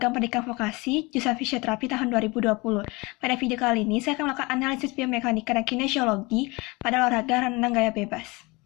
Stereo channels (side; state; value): right; quieter; 25.1 dB